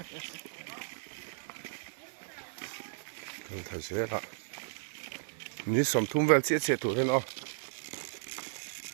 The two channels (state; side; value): silent; left; 55 dB below the other